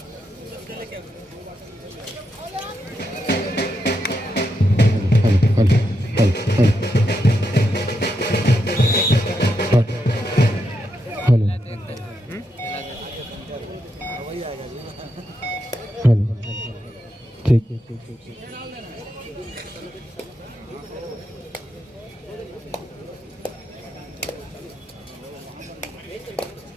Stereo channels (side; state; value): both; normal; correlation 0.83